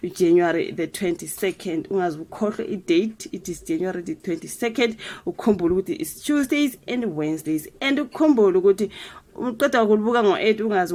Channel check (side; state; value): both; identical; correlation 1.00